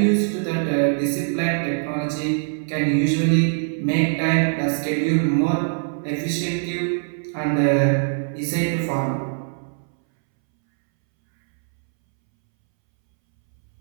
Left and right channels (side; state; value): left; silent; 64 dB below the other